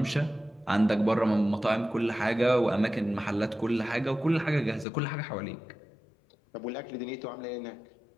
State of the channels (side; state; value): right; drops out; at 4.9 s